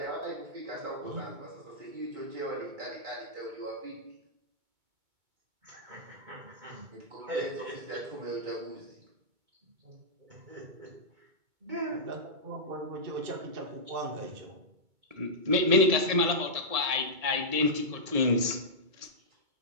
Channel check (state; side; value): late; left; 2.2 ms